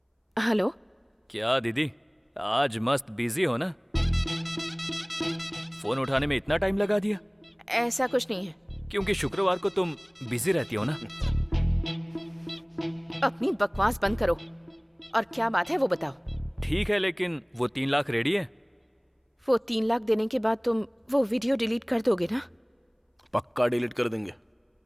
हेलो। क्या दीदी, आज मस्त बिजी हो ना? फोन उठाने में इतना टाइम लगा दिया? ऐसा कुछ नहीं है। क्योंकि शुक्रवार को तुम बिजी रहती हो ना। अपनी बकवास बंद करो और क्या बात है वो बताओ। ठीक है, लेकिन वो 3 लाख रेडी है? वो 3 लाख देने के बाद तुम वो वीडियो डिलीट कर दोगे ना? पक्का डिलीट कर देंगे।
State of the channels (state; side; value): identical; both; correlation 1.00